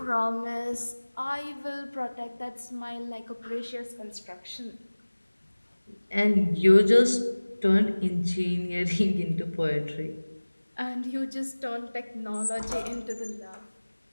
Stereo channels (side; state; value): both; inverted; correlation -1.00